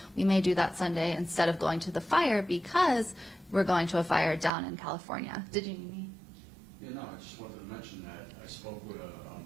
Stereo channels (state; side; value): drops out; left; at 4.5 s